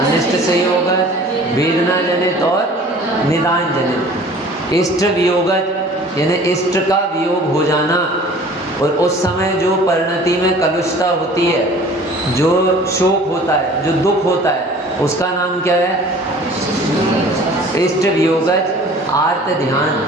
संयोग, वेदना जनित और निदान जनित। इष्ट वियोग यानी इष्ट का वियोग हो जाना, और उस समय जो परिणति में कलुषता होती है, जो शोक होता है, जो दुख होता है, उसका नाम क्या है? इष्ट वियोग आर्त ध्यान।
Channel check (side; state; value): both; normal; correlation 0.47